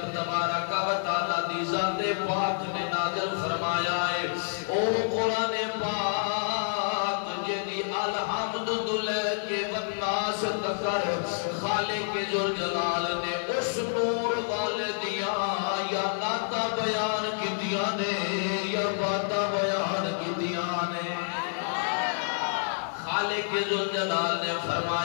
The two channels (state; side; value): silent; right; 59 dB below the other